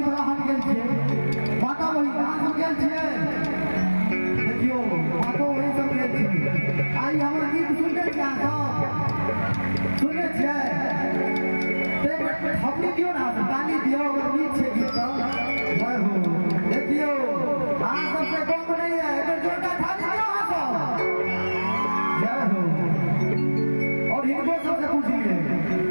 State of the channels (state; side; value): inverted; both; correlation -1.00